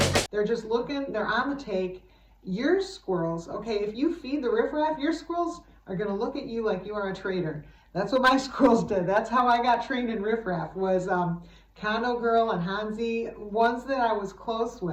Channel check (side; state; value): both; identical; correlation 1.00